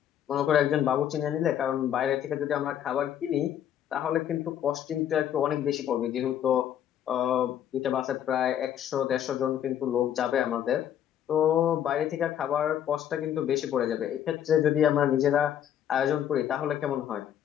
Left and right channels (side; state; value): right; quieter; 10.1 dB